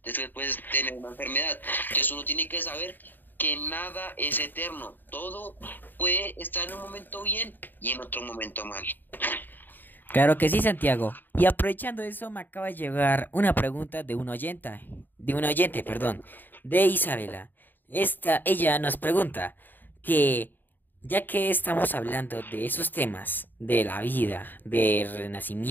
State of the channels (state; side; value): late; right; 0.091 ms